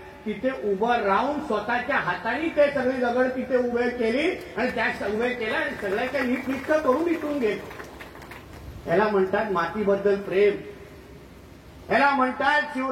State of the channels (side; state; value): both; identical; correlation 1.00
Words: तिथे उभं राहून स्वतःच्या हाताने ते सगळी दगड तिथे उभे केली आणि त्या उभे केल्या आणि सगळ्याच्या नीटनीट करून इथून गेले. याला म्हणतात मातीबद्दल प्रेम, याला म्हणतात